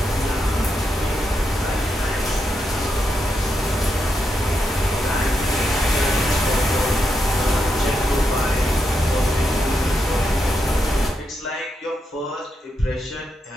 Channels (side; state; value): both; normal; correlation 0.83